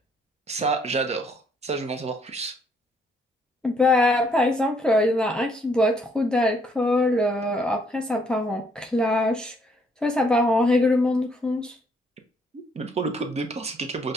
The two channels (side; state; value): both; normal; correlation 0.68